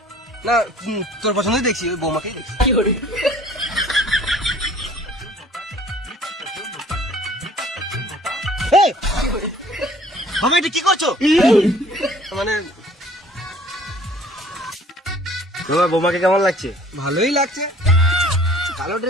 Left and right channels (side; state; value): both; normal; correlation 0.53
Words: না, তোর পছন্দই দেখছি, ওই বৌমাকেই দেখছি। এই, বাবা এটা কি করছো? মানে তোমার বৌমাকে কেমন লাগছে? ভালোই লাগছে। কালো